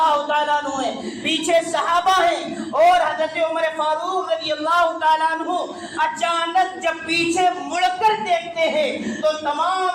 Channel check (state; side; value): identical; both; correlation 1.00